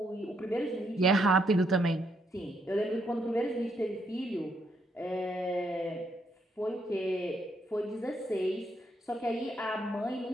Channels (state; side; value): normal; both; correlation 0.75